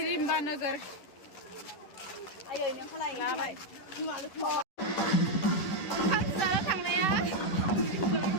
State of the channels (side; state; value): right; late; 10 ms